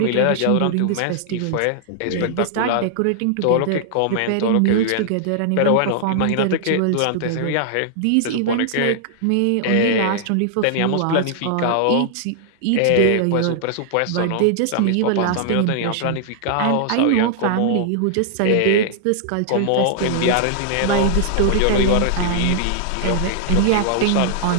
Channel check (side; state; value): both; different; correlation -0.01